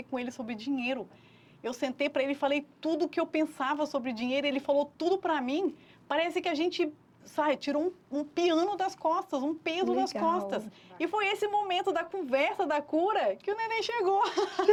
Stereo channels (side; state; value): both; identical; correlation 1.00